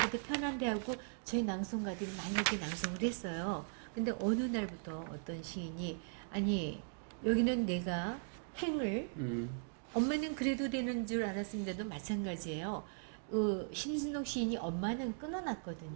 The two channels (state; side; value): silent; left; digital silence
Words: 더 편한데 하고 저희 낭송가들이 많이 이렇게 낭송을 했어요. 근데 어느 날부터 어떤 시인이 아니 여기는 내가 행을 엄마는 그래도 되는 줄 알았습니다도 마찬가지예요. 심순옥 시인이 엄마는